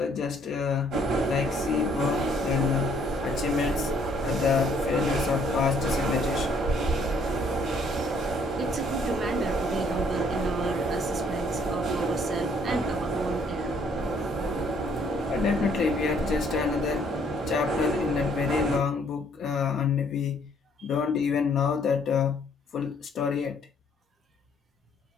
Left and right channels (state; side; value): normal; both; correlation 0.64